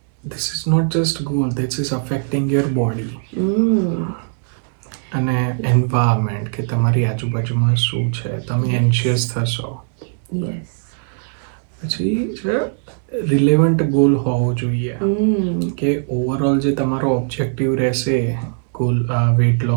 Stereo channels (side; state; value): left; silent; digital silence